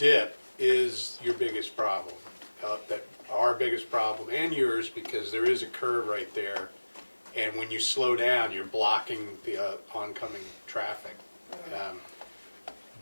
is your biggest problem. That our biggest problem and yours, because there is a curve right there. And when you slow down, you're blocking the oncoming traffic.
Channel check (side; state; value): both; inverted; correlation -1.00